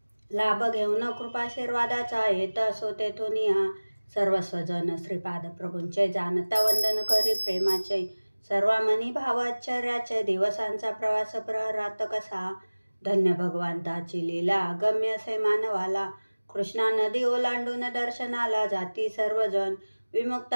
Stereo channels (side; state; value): both; inverted; correlation -1.00